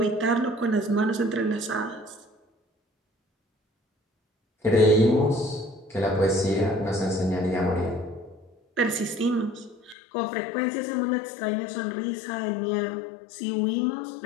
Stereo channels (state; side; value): drops out; right; at 10.0 s